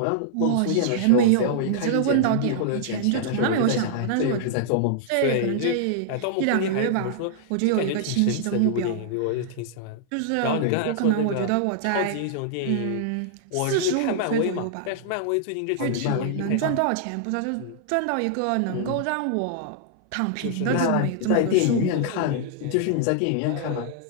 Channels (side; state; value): both; different; correlation -0.01